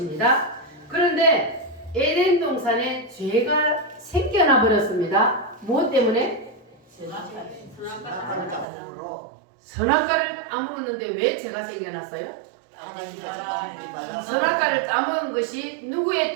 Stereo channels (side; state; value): left; drops out; at 8.7 s